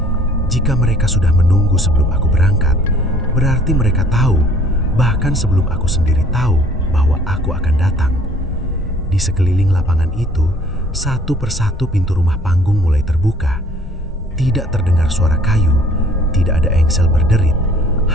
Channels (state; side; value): normal; both; correlation 0.56